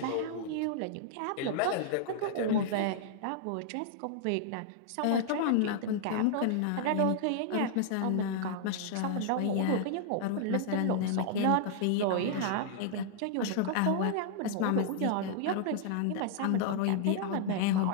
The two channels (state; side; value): different; both; correlation -0.01